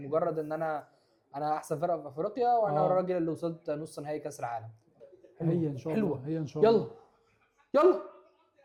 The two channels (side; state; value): both; identical; correlation 1.00